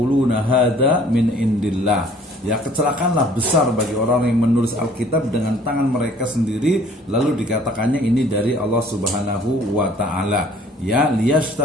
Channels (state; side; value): normal; both; correlation 0.55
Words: hadza min indillah. Ya, kecelakaanlah besar bagi orang yang menulis Alkitab dengan tangan mereka sendiri, lalu dikatakannya ini dari Allah Subhanahu wa taala. Ya,